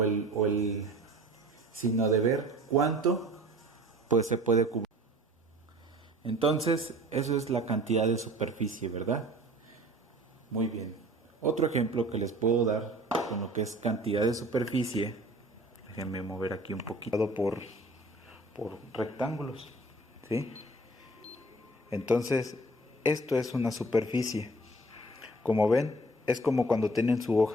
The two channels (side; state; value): both; normal; correlation 0.48